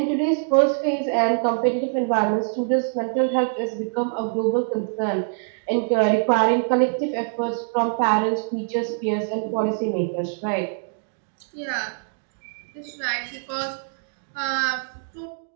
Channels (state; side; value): silent; left; digital silence